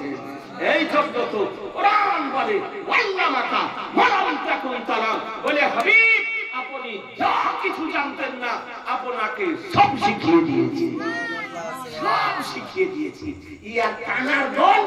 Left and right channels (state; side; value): identical; both; correlation 1.00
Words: এই জন্য তো কোরআন বলে ওয়াল্লামাকা মালাম তাকুন তারা, বলে হাবিব আপনি যা কিছু জানতেন না আপনাকে সব শিখিয়ে দিয়েছি, সব শিখিয়ে দিয়েছি। ইয়ার কানার দল,